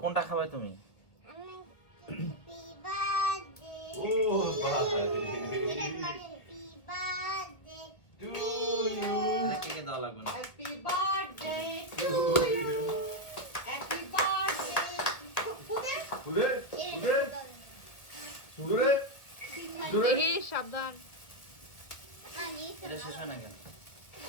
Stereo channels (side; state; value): right; late; 1.9 ms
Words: কোনটা খাবে তুমি? ও বাবা কেকে দেওয়া লাগবে না। Happy birthday to you, happy birthday. দূরে দূরে দূরে দেখি সাবধান। এটা শেষ হয় না কেন?